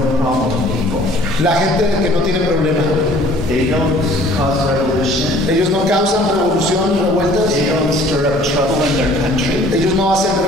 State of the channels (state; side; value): normal; both; correlation 0.53